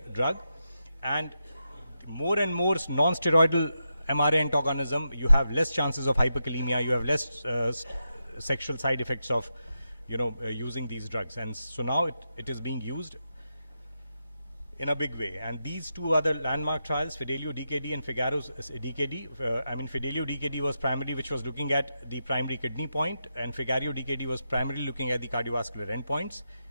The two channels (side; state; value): both; inverted; correlation -0.86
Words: drug, and more and more non-steroidal MRA antagonism, you have less chances of hyperkalemia, you have less sexual side effects of using these drugs. And so now it is being used in a big way. And these 2 other landmark trials, Fidelio-DKD and Figaro-DKD, Fidelio-DKD was primarily which was looking at the primary kidney point, and Figario-DKD was primarily looking at the cardiovascular endpoints.